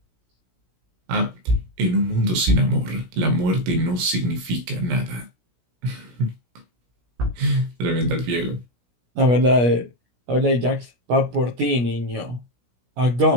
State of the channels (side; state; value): left; late; 17 ms